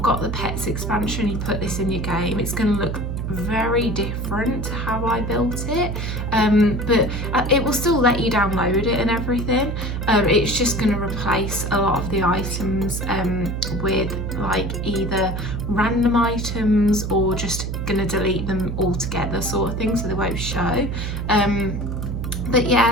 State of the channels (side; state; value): right; noise; hum, 3 dB below the sound